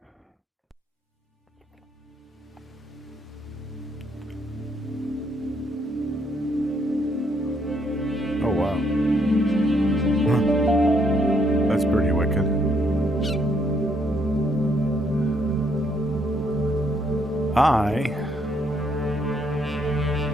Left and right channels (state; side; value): normal; both; correlation 0.71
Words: Oh, wow. That's pretty wicked. I